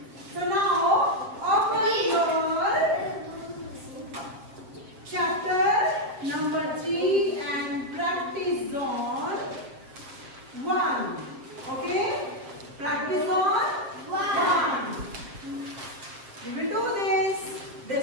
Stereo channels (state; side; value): late; left; 7.5 ms